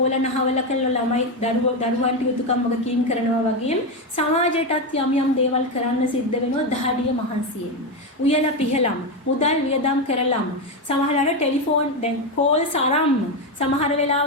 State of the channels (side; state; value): both; normal; correlation 0.11